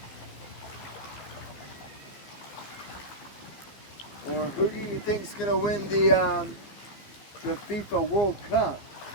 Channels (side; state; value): right; late; 15 ms